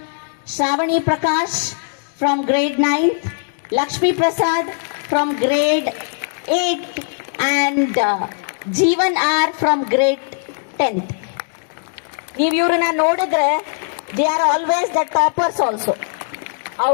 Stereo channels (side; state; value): right; silent; digital silence